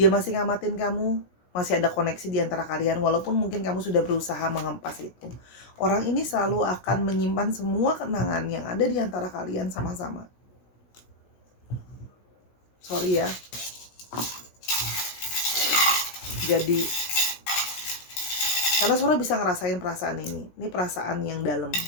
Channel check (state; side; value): late; right; 16 ms